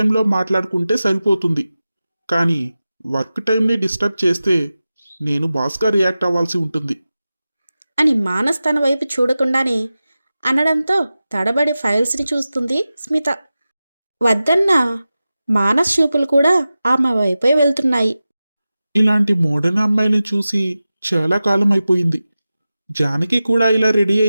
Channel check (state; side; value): inverted; both; correlation -0.95